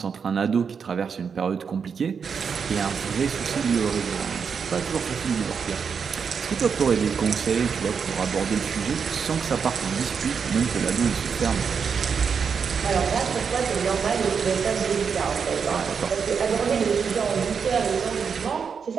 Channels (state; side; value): quieter; left; 6.3 dB